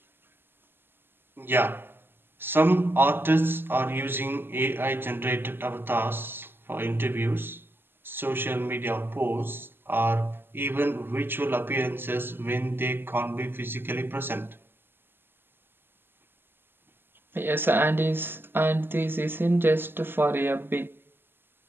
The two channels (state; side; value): late; left; 0.10 ms